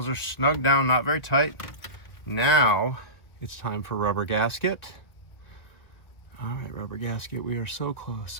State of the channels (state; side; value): late; right; 1.8 ms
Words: are snug down, not very tight. Now it's time for rubber gasket. All right, rubber gasket, we are so